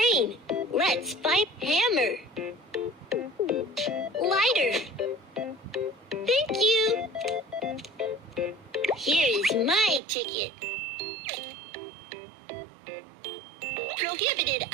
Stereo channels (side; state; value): left; drops out; at 10.0 s